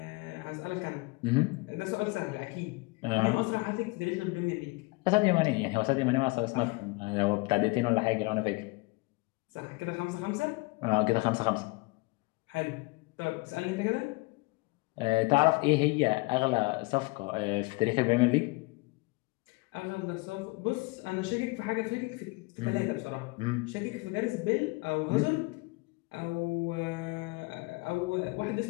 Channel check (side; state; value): right; quieter; 25.5 dB